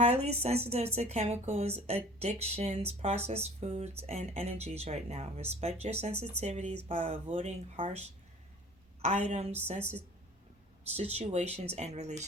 sensitive to chemicals, addictions, processed foods, and energies right now. Respect your sensitivities by avoiding harsh items, situations, and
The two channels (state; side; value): normal; both; correlation 0.46